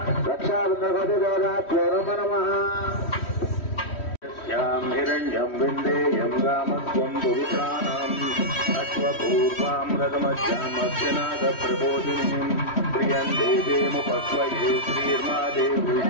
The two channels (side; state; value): right; late; 3.1 ms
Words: रक्षाबंधनोदाभ्यो नमः. हिरण्यं विन्देयं गामत्वं पुरुषाणाम् अश्वपूर्वां रथमज्जामस्यनादप्रबोधिनीं प्रियं देवीमुपस्वये श्रीर्मा